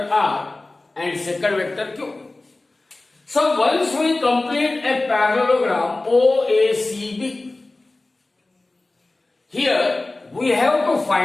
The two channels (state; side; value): quieter; right; 3.0 dB